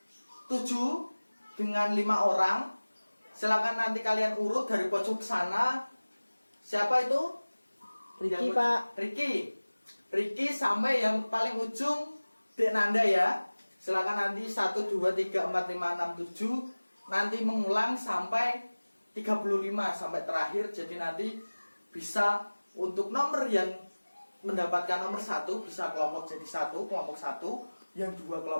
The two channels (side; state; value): both; inverted; correlation -1.00